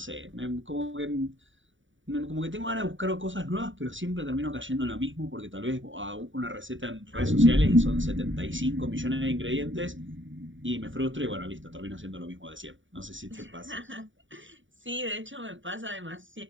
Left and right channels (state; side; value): late; left; 0.56 ms